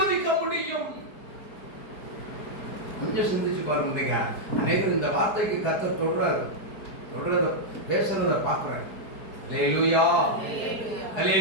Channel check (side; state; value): right; late; 4.7 ms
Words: முடியும்? கொஞ்சம் சிந்திச்சு பாருங்க. அநேகர் இந்த வார்த்தைக்கு கர்த்தர் சொல்றாரு, சொல்றத பேசுறத பார்க்குறேன். அல்லேலூயா,